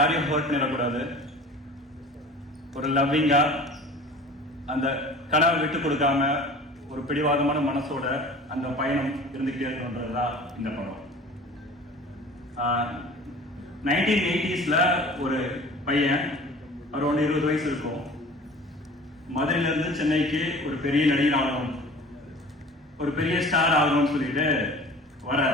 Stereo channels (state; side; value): normal; both; correlation 0.43